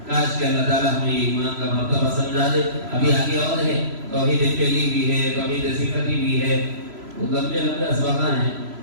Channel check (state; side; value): late; left; 3.0 ms